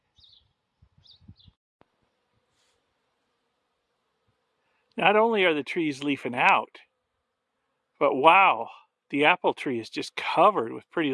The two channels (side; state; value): both; identical; correlation 1.00